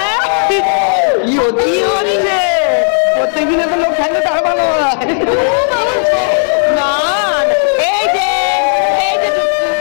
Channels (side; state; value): right; silent; digital silence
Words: প্রত্যেকদিনে তো লোক থাকলে তার ভালো হয় না।